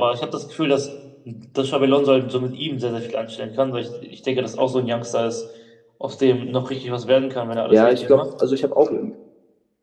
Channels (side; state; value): both; identical; correlation 1.00